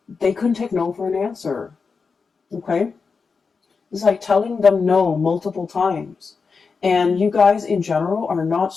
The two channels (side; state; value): right; quieter; 5.0 dB